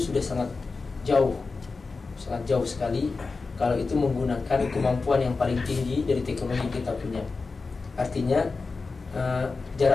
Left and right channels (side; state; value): right; quieter; 4.2 dB